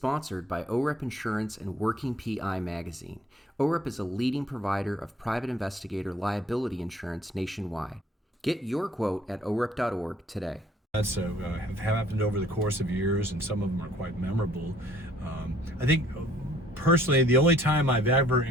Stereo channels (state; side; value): normal; both; correlation 0.59